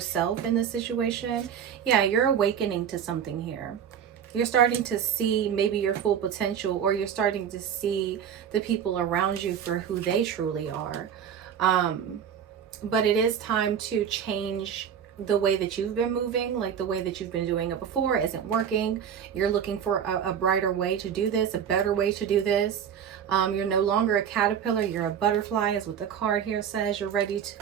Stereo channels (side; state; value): left; quieter; 8.4 dB